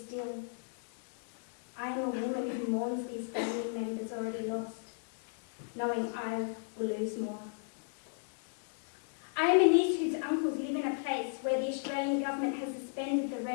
I am a woman who mourns these family members already lost, knowing I will lose more. I am a niece whose uncles live in a place where the Australian government has suspended the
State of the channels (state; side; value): silent; right; digital silence